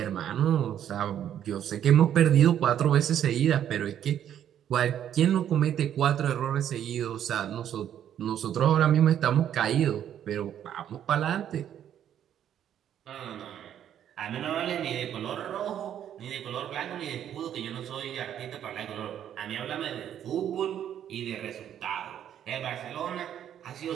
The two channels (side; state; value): left; quieter; 10.1 dB